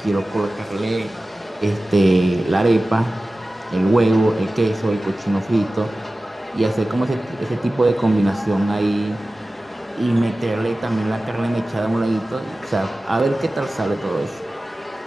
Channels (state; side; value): normal; both; correlation 0.96